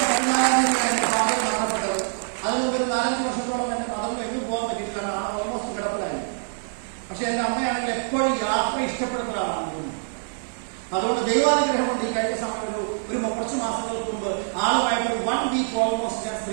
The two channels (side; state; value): left; silent; digital silence